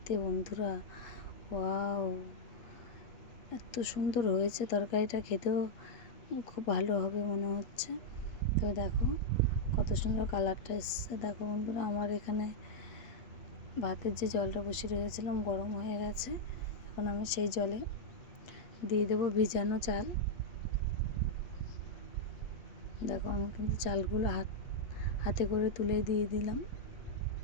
বন্ধুরা, ওয়াও, এত সুন্দর হয়েছে তরকারিটা, খেতেও খুব ভালো হবে মনে হচ্ছে। তো তো দেখো কত সুন্দর কালারটা এসছে। দেখো বন্ধুরা, আমার এখানে ভাতের যে জলটা বসিয়ে রেখেছিলাম গরম হয়ে গেছে। এখন আমি সেই জলে দিয়ে দেবো ভিজানো চাল। দেখো আমি কিন্তু চালগুলো হাতে করে তুলে দিয়ে দিলাম।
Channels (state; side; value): late; right; 8.4 ms